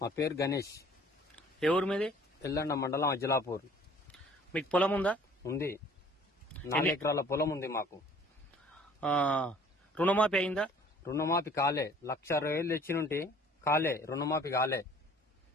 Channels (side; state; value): both; normal; correlation 0.53